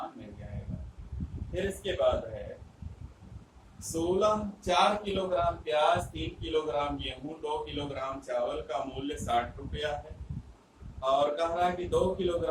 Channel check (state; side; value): identical; both; correlation 1.00